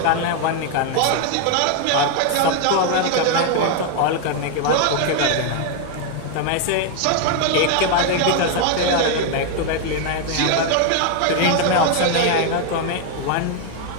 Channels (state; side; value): different; both; correlation 0.01